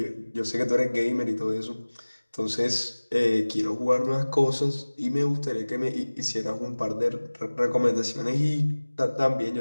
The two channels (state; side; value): inverted; both; correlation -1.00